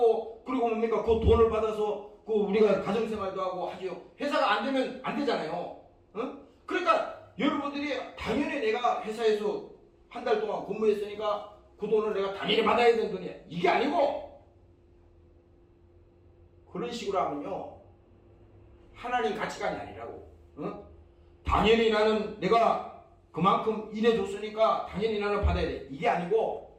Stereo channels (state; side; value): identical; both; correlation 1.00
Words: 그리고 뭡니까? 그 돈을 받아서 그 우리가 가정생활도 하고 하죠. 회사가 안 되면 안 되잖아요. 그러니까 여러분들이 당연히 내가 회사에서 한 달 동안 근무했으니까 그 돈을 내가 당연히 받아야 되는 돈이야. 이게 아니고 그런 식으로 하면요 하나님 가치관이 아니라고. 어? 당연히 나는 내가 그만큼 일해줬으니까 당연히 나는 받아야 돼. 이게